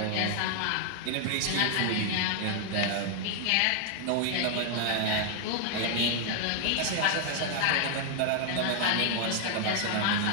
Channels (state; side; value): different; both; correlation 0.00